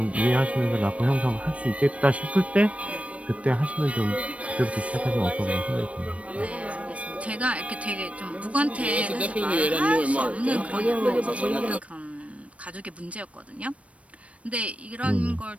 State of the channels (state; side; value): late; left; 0.064 ms